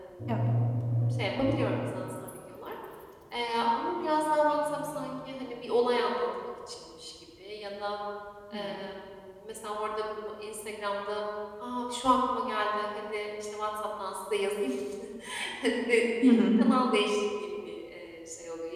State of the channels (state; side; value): identical; both; correlation 1.00